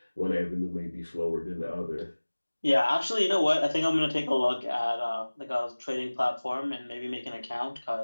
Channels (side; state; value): both; inverted; correlation -1.00